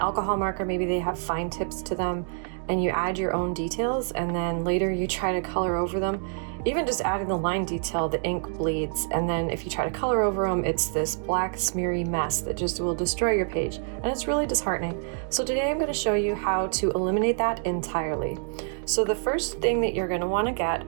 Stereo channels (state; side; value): silent; left; 60 dB below the other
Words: marker, maybe they have fine tips to them, and you add your own details and then later you try to color over them, even just adding the line detail, the ink bleeds. And then if you try to color over them, it's this black smeary mess that just will destroy your page. And it's really disheartening. So today I'm going to show you how to eliminate that entirely. So the first thing that you're going to want to get